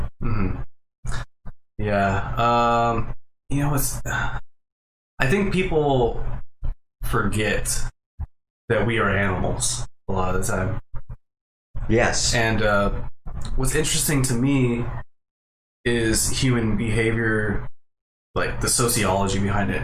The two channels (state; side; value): identical; both; correlation 1.00